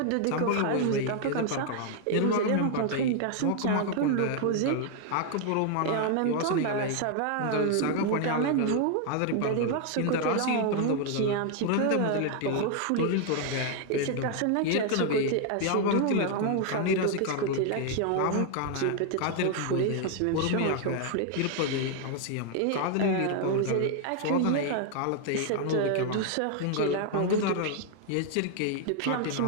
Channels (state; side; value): different; both; correlation 0.00